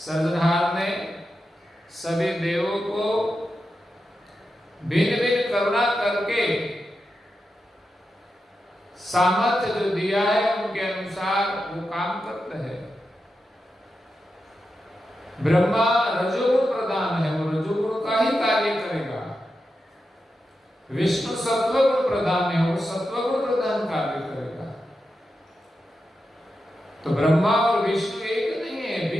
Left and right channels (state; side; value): normal; both; correlation 0.89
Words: ने सभी देवों को भिन्न भिन्न करुणा करके सामर्थ्य जो दिया है उनके अनुसार वो काम करते हैं। ब्रह्मा रजोगुण प्रधान है, वो रजोगुण का ही कार्य करेगा। विष्णु सत्वगुण प्रधान है, वो सत्वगुण प्रधान कार्य करेगा। तो ब्रह्मा और विष्णु एक नहीं है,